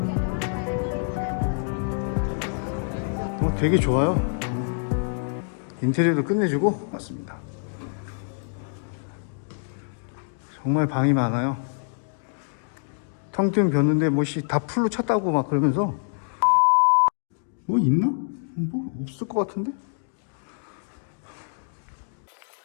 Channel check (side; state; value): right; silent; digital silence